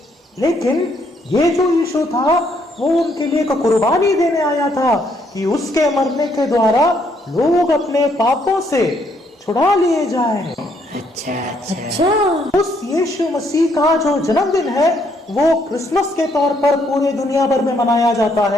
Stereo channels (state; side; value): normal; both; correlation 0.71